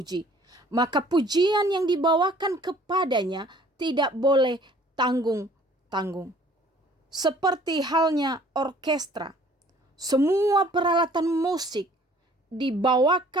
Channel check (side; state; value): both; normal; correlation 0.55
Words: Maka pujian yang dibawakan kepadanya tidak boleh tanggung-tanggung. seperti halnya orkestra. Semua peralatan musik